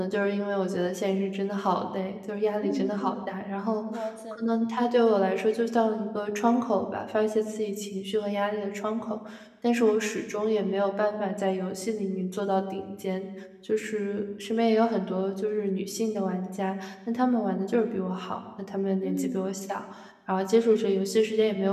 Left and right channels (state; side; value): identical; both; correlation 1.00